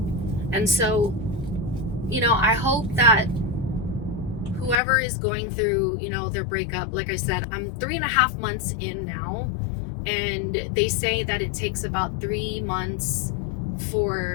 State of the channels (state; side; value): drops out; right; at 4.8 s